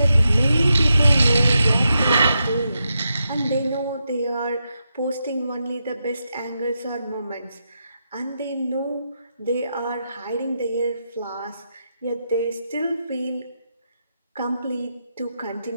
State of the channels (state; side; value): inverted; both; correlation -0.86